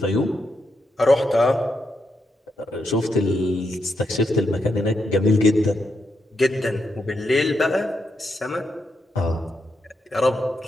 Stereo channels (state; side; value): normal; both; correlation 0.82